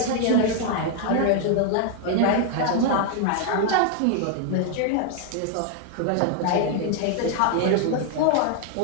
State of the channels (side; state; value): both; different; correlation 0.00